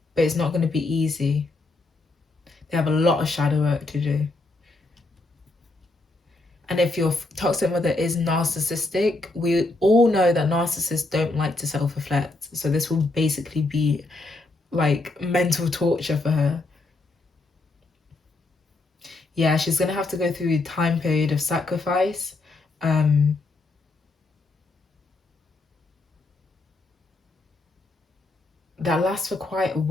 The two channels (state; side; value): quieter; right; 3.1 dB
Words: But it's not going to be easy. They have a lot of shadow work to do. And if your toxic mother is narcissistic, we all know that narcissists don't like to self-reflect. So this will basically be like mental torture for her. Yeah, she's gonna have to go through a time period of sacrifice. That lasts for quite a